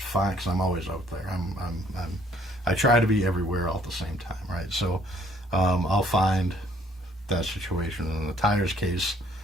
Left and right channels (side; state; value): both; normal; correlation 0.62